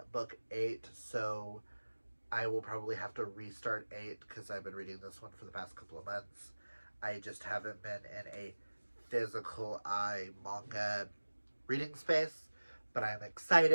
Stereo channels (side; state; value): both; inverted; correlation -1.00